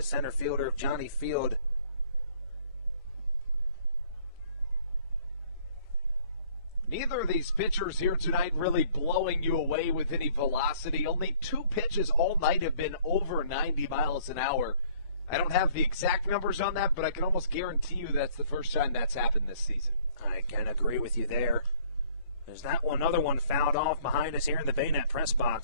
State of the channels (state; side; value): inverted; both; correlation -0.59